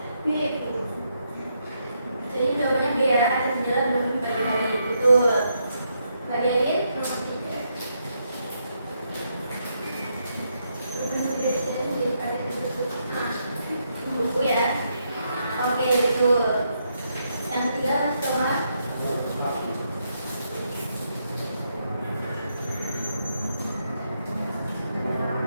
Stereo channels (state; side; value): inverted; both; correlation -0.79